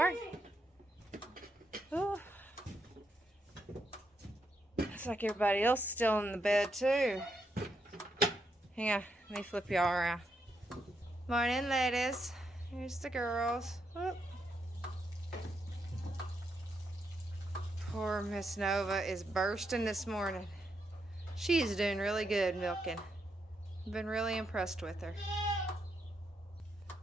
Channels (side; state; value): both; normal; correlation 0.80